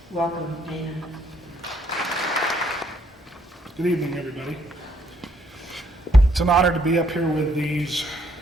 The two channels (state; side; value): normal; both; correlation 0.69